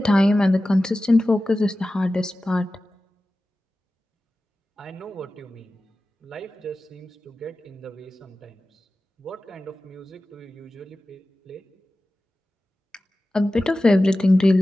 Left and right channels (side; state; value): both; normal; correlation 0.95